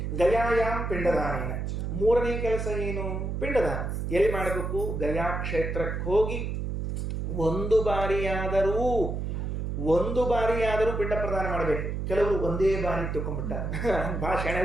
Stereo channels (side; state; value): right; noise; hum, 3 dB below the sound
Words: ಗಯಾಯಾಮ್ ಪಿಂಡದಾನೇನ, 3ನೇ ಕೆಲಸ ಏನು? ಪಿಂಡದಾನ. ಎಲ್ಲಿ ಮಾಡಬೇಕು? ಗಯಾ ಕ್ಷೇತ್ರಕ್ಕೆ ಹೋಗಿ ಒಂದು ಬಾರಿಯಾದರೂ ಪಿಂಡ ಪ್ರದಾನ ಮಾಡಬೇಕು. ಕೆಲವರು ಒಂದೇ ಬಾರಿ ತಿಳ್ಕೊಂಡ್ಬಿಟ್ಟಾರೆ, ಭಾಳ ಶೆಣೆ